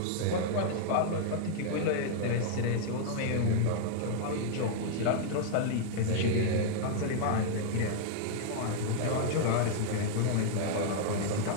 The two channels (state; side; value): different; both; correlation -0.01